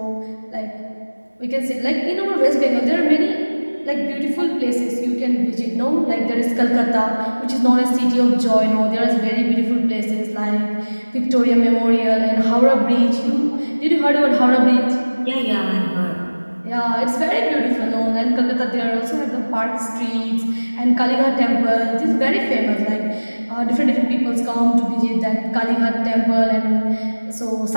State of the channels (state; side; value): inverted; both; correlation -1.00